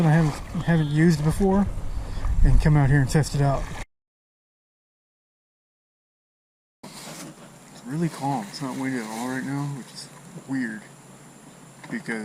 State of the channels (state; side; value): identical; both; correlation 1.00